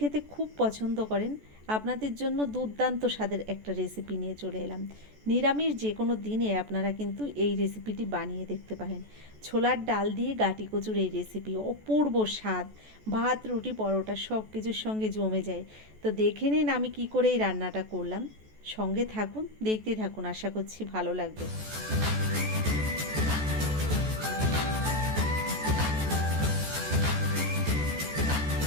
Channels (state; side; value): late; left; 14 ms